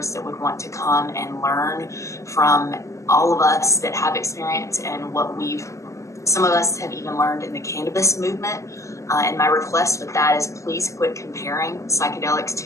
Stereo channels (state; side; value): late; right; 0.15 ms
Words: that would want to come and learn from all of us that have experience and what some of us have even learned in the cannabis movement. And my request with that is please quit comparing psychedelics